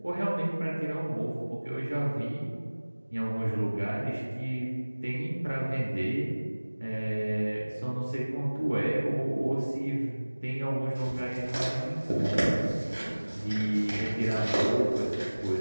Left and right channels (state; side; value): inverted; both; correlation -1.00